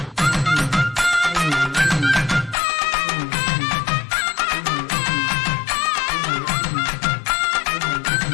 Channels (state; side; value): drops out; right; at 2.6 s